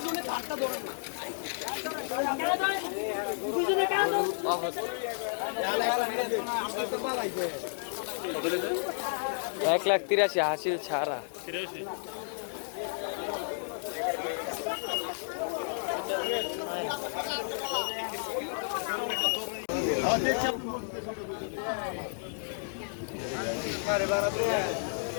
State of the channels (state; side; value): silent; right; digital silence